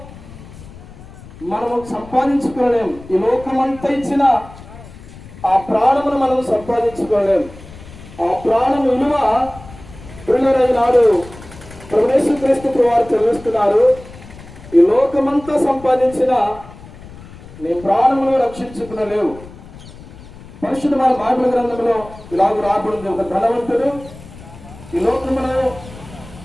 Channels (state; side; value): noise; left; rumble, 18 dB below the sound